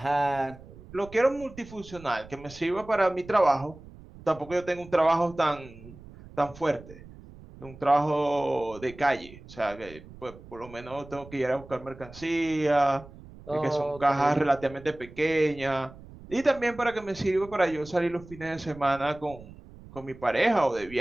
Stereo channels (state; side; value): noise; right; rumble, 19 dB below the sound